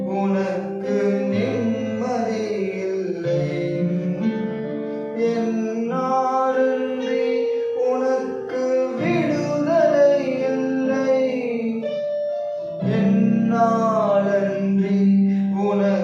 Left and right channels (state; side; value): identical; both; correlation 1.00